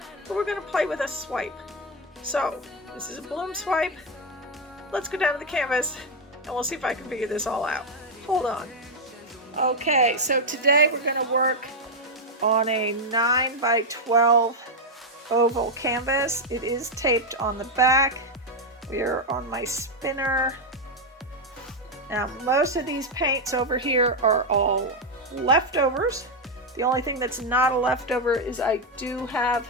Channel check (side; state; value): both; normal; correlation 0.03